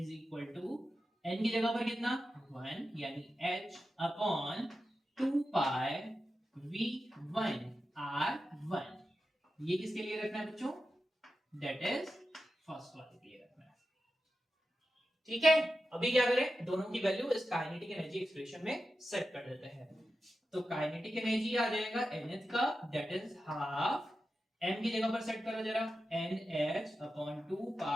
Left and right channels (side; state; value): both; normal; correlation 0.91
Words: equal to n की जगह पर कितना 1 यानी h अपॉन 2 पाई v1 r1। ये किसके लिए रखना है बच्चों, दैट इज फर्स्ट वाले के लिए रखना है। ठीक है, अभी क्या करें, दोनों की वैल्यू इस काइनेटिक एनर्जी एक्सप्रेशन में सेट कर देते हैं। तो काइनेटिक एनर्जी आ जाएगा nth का, दैट इज हाफ, m की जगह पर सेट करो जरा, nh अपॉन 2